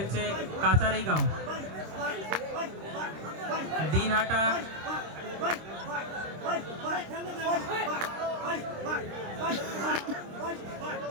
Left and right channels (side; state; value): left; late; 26 ms